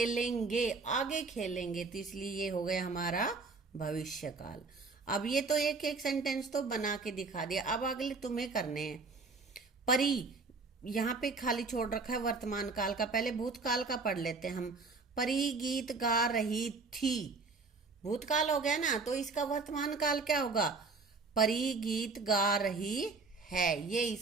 आगे खेलेंगे, तो इसलिए ये हो गया हमारा भविष्य काल। अब ये तो एक एक सेंटेंस तो बना के दिखा दिया। अब अगले तुम्हें करने हैं। परी, यहाँ पे खाली छोड़ रखा है वर्तमान काल का, पहले भूतकाल का पढ़ लेते हैं हम। परी गीत गा रही थी, भूतकाल हो गया ना, तो इसका वर्तमान काल क्या होगा? परी गीत गा रही है, ये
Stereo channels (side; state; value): left; quieter; 4.2 dB